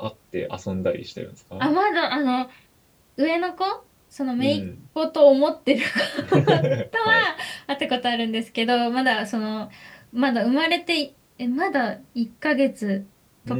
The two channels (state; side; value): identical; both; correlation 1.00